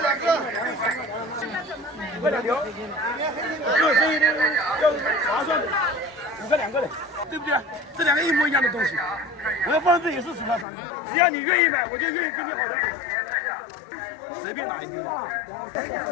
5个2条，这生意要划算的，5个2个的，对不对？这两个一模一样的东西，我要放这也是10块3毛，只要你愿意买，我就愿意给你好的，随便拿一个。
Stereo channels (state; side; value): drops out; right; at 10.7 s